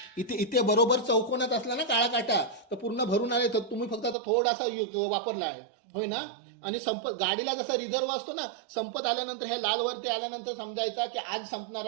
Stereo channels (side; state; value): left; drops out; at 4.2 s